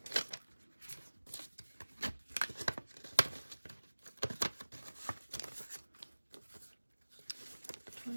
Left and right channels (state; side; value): inverted; both; correlation -1.00